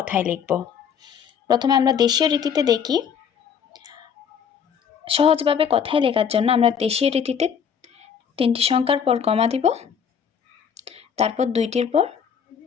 লিখব। প্রথমে আমরা দেশীয় রীতিতে দেখি। সহজভাবে কথায় লেখার জন্য আমরা দেশীয় রীতিতে 3টি সংখ্যার পর কমা দিব, তারপর 2টির পর,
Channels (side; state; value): right; quieter; 7.4 dB